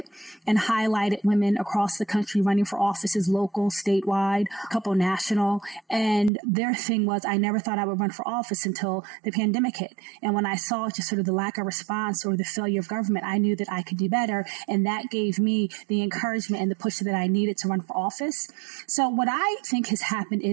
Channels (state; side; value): drops out; left; at 6.3 s